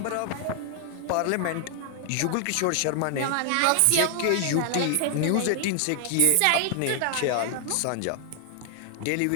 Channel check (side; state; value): both; different; correlation 0.00